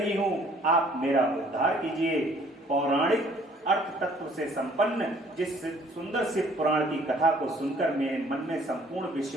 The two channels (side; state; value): both; normal; correlation 0.58